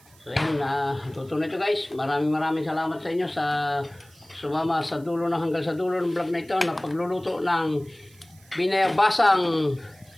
So yun, tuto na ito guys. Maraming salamat sa inyo sa sumama sa dulo na hanggang sa dulo ng vlog na ito na pagluluto ng binayabasang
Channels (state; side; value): noise; right; hiss, 28 dB below the sound